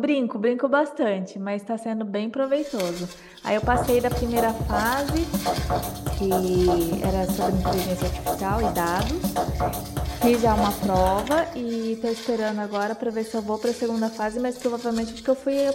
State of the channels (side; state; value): both; identical; correlation 1.00